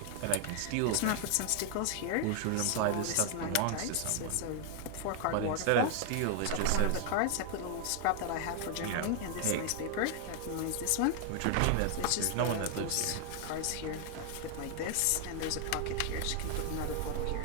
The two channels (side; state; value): both; different; correlation 0.00